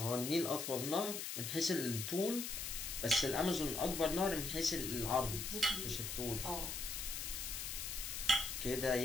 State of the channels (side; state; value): left; noise; hiss, 4 dB below the sound